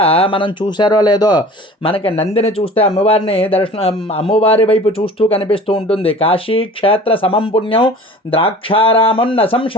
మనం చూసారో లేదో, మనకి నందిని చూస్తే అమ్మవారి వైపు చూస్తూ కనిపిస్తూ ఉంటుంది. కాశీ క్షేత్ర సమం పుణ్యం ద్రాక్షారామం న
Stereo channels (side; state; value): both; normal; correlation 0.43